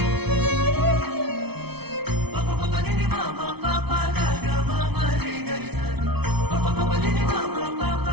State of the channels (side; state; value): left; late; 0.98 ms